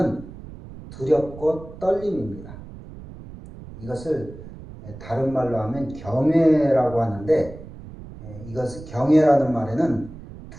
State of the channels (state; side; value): noise; right; rumble, 15 dB below the sound